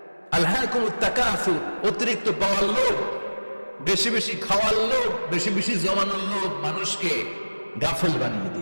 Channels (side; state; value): both; inverted; correlation -1.00